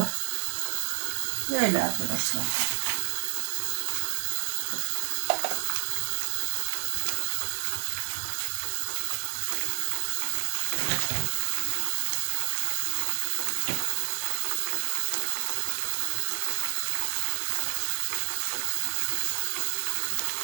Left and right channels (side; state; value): left; silent; 59 dB below the other